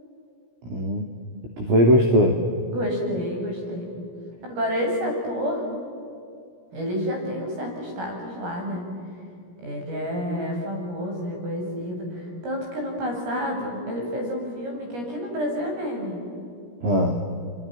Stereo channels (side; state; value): left; late; 17 ms